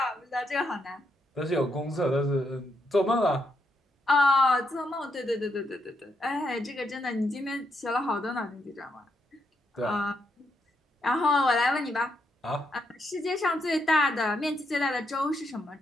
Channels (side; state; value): both; normal; correlation 0.79